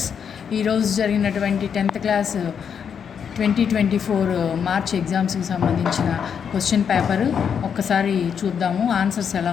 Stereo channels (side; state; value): right; quieter; 7.4 dB